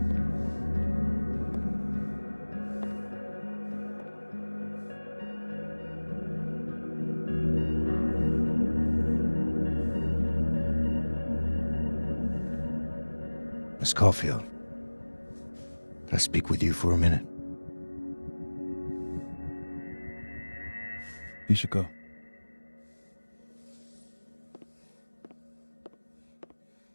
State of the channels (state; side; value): inverted; both; correlation -1.00